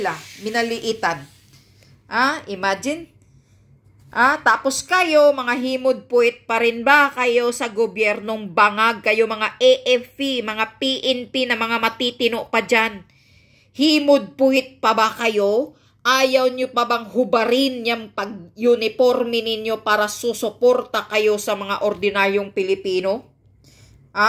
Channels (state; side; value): identical; both; correlation 1.00